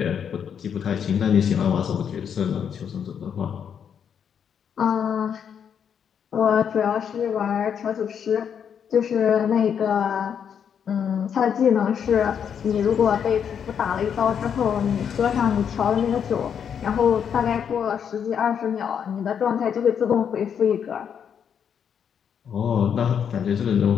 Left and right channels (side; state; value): right; quieter; 7.8 dB